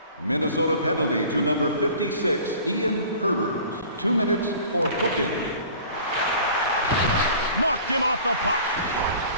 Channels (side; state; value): both; inverted; correlation -0.46